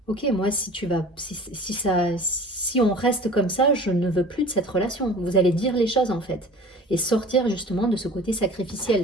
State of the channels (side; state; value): both; normal; correlation 0.42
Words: OK, moi si tu vas si on reste comme ça, je ne veux plus de cette relation. Vous allez dire les choses, en fait, et sortir justement de ce côté